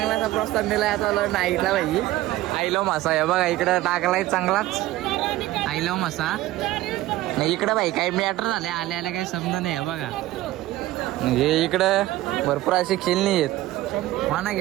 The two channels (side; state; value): left; quieter; 16.1 dB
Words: प्रस्ताव दिला. आता आलो नाईटला भाई. आईलो मासा आहे बघा, इकडं टाकलाय चांगलाच आईलो मासा. नाही इकडं भाई काही मॅटर झाले, आल्या काही समजा नाही आहे बघा. म्हणजे इकडं भरपूर असे खेळणी आहेत, पाना